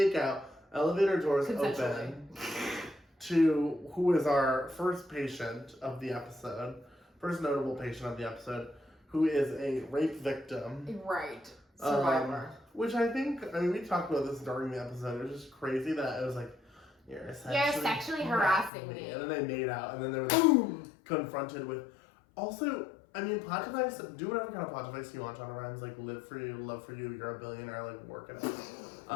out. Elevator doors Consensually. open to who is our first patient of the episode, first notable patient of the episode, who is a rape victim. Right. Survivor. Which I mean, we talked about this during the episode. It was just crazy that it was like, you're sexually harassing me. And then they made out, and then they were confronted with. Also, I mean, plot device, do whatever kind of plot device you want, Shonda Rhimes, live for you, love for you, you're a billionaire, work it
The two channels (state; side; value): drops out; right; at 18.7 s